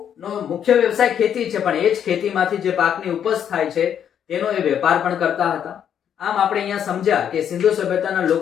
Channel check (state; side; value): quieter; right; 8.9 dB